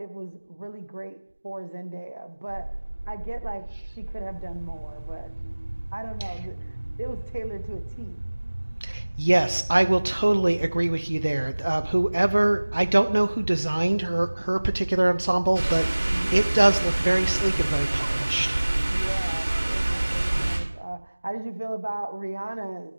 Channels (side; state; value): both; inverted; correlation -1.00